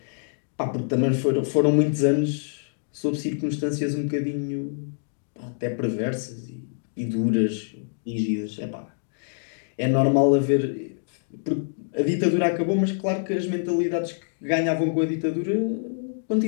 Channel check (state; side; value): silent; right; digital silence